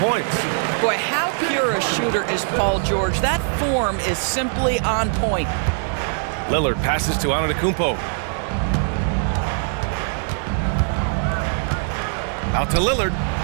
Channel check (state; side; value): silent; left; 65 dB below the other